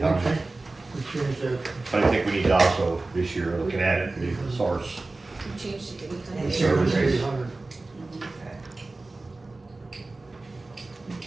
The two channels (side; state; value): left; quieter; 3.2 dB